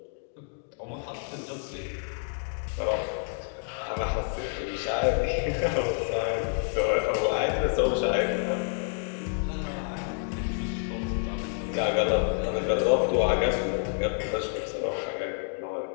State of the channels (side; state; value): right; silent; 59 dB below the other